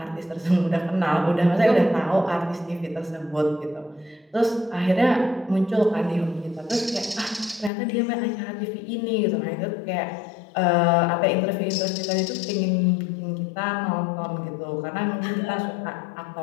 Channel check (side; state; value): right; drops out; at 7.7 s